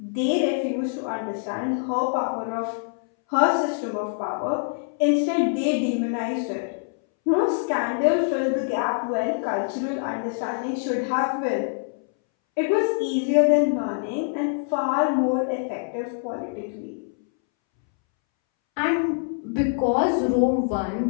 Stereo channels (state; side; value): silent; right; 62 dB below the other